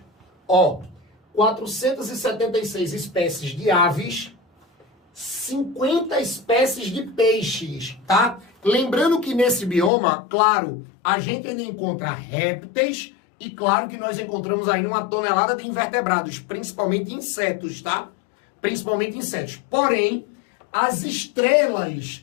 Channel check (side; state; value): right; drops out; at 9.9 s